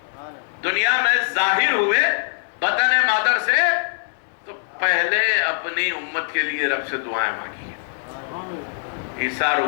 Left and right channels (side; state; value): right; silent; digital silence